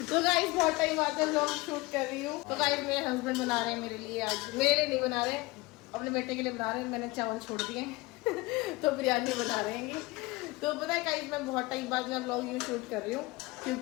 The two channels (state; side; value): quieter; right; 22.2 dB